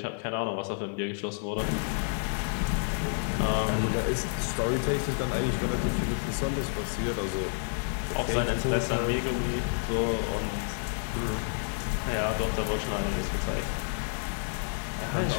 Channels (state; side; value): silent; right; 58 dB below the other